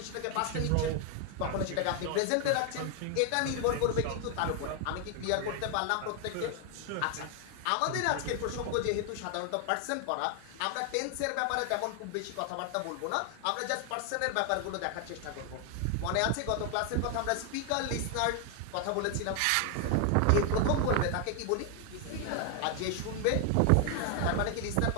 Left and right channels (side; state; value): both; different; correlation 0.00